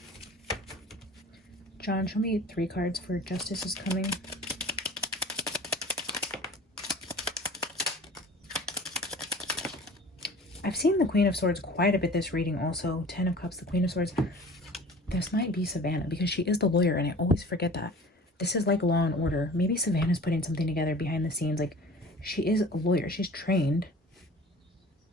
John, show me 3 cards for justice is coming. I've seen the Queen of Swords quite a bit this reading also. 10 of Cups, the Queen of Swords. This might be Savannah because she is the lawyer and I always forget that. This is like Law and Order. Maybe Savannah's putting something together behind the scenes. Like, she is a lawyer. She's trained.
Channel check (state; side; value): normal; both; correlation 0.43